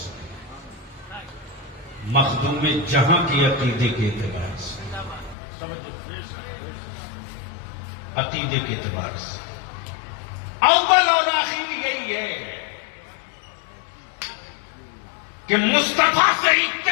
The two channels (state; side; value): drops out; right; at 5.4 s